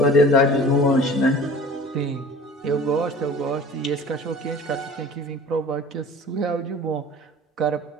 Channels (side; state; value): both; normal; correlation 0.43